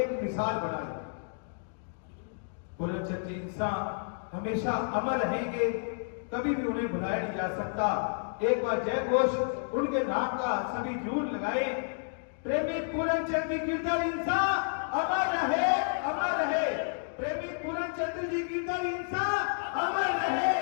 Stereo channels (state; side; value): silent; right; digital silence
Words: मिसाल बनाई। पूर्णचंद जी इंसान हमेशा अमर रहेंगे, कभी भी उन्हें भुलाया नहीं जा सकता। एक बार जय घोष उनके नाम का सभी जरूर लगाए। प्रेमी पूर्णचंद जी गिरधर इंसा अमर रहे, अमर रहे। प्रेमी पूर्णचंद जी गिरधर इंसा अमर रहे,